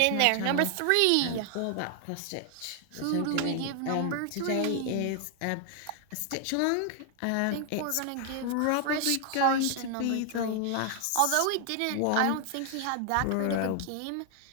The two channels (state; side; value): different; both; correlation 0.00